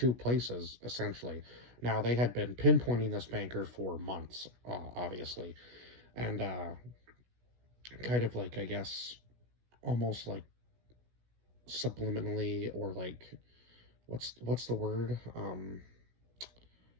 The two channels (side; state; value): left; late; 16 ms